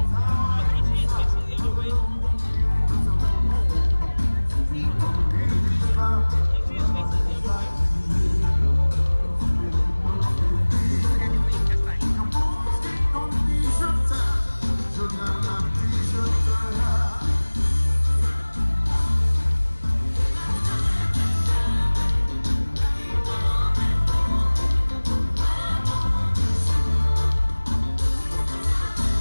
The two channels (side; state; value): both; inverted; correlation -1.00